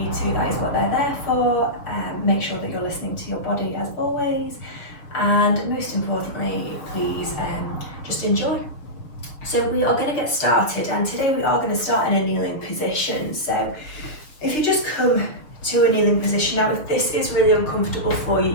to. That is what they're there for. Make sure that you're listening to your body as always, and most importantly, please just enjoy. So we are going to get started, and today we are going to start in a kneeling position. So if you just come to a kneeling position, now if this is really uncomfortable for you,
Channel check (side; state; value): right; late; 6.4 ms